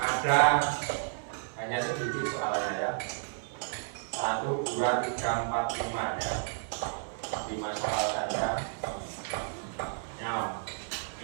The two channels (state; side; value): silent; left; 56 dB below the other